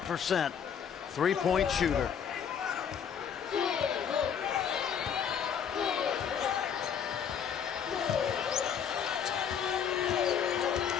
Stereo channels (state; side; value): quieter; right; 7.8 dB